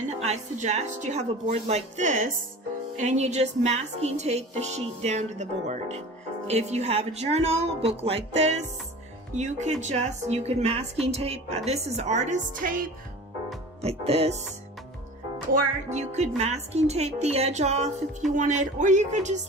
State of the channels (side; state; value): both; normal; correlation 0.38